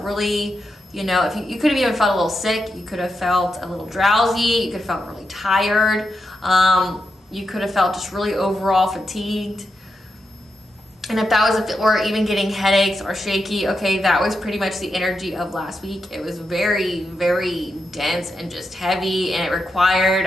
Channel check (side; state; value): both; normal; correlation 0.86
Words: really, if you could have even felt a little sick, you could have felt a little drowsy, you could have felt really tired, you could have felt just really overall fatigued. And if that was, or even getting headaches or shaky, okay, that was pretty much the energy of last week. It was very, very dense and just heavy, and it required